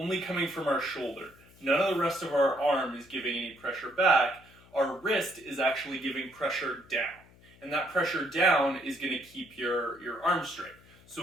coming from our shoulder. None of the rest of our arm is giving any pressure back. Our wrist is actually giving pressure down. And that pressure down is going to keep your arm straight. So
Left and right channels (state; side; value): noise; left; hum, 26 dB below the sound